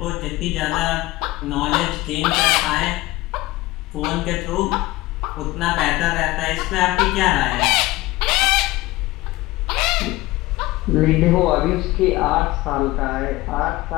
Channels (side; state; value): right; quieter; 19.1 dB